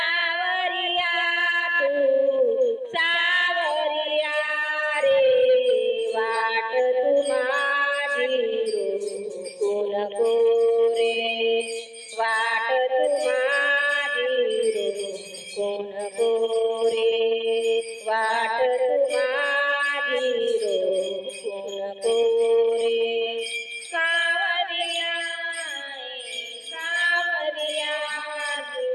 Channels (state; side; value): identical; both; correlation 1.00